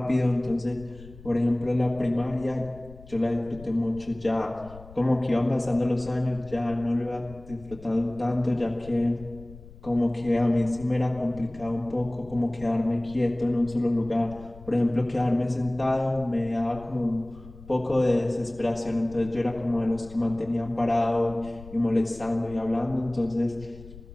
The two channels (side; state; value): left; noise; rumble, 18 dB below the sound